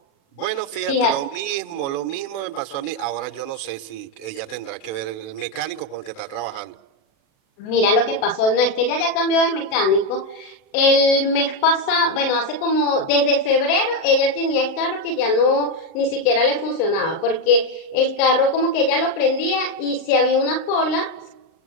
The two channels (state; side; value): late; right; 37 ms